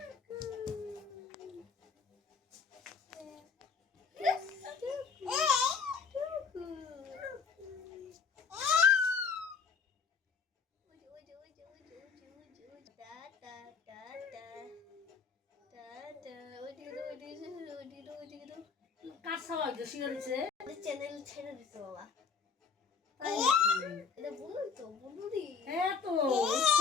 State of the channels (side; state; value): right; quieter; 5.5 dB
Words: কার সবাই শিখে দিচ্ছে চ্যানেল ছেড়ে দিতে বাবা এটা বলুই তো বলুরি হ্যাঁ তো